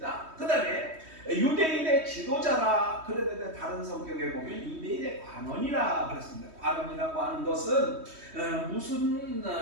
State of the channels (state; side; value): late; left; 3.2 ms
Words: 그 다음에 유대인의 지도자라, 그런데 다른 성경에 보면 유대인의 관원이라 그랬습니다. 관원이라고 하는 것은 무슨